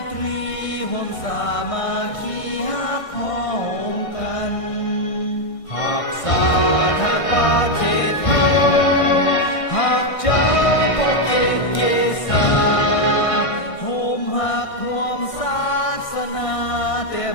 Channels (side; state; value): right; late; 1.6 ms